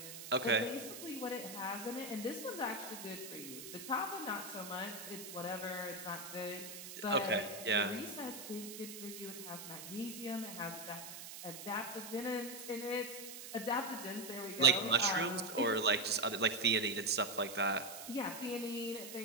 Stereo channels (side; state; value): right; noise; hiss, 10 dB below the sound